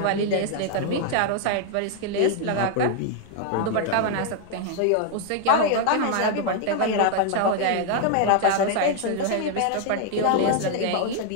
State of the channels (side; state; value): both; different; correlation 0.00